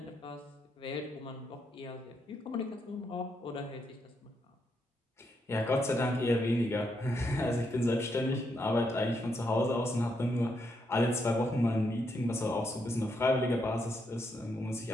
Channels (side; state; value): both; normal; correlation 0.79